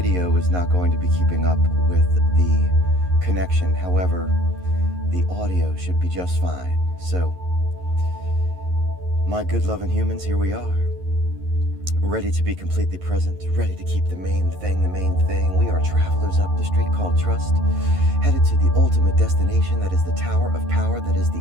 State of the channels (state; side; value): late; left; 11 ms